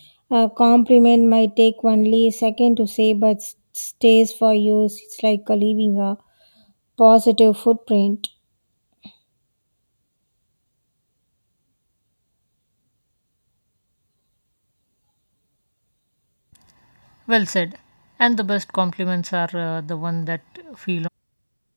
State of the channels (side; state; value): both; inverted; correlation -1.00